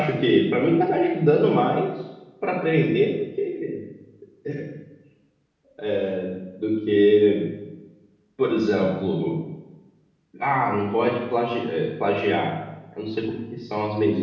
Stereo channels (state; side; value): identical; both; correlation 1.00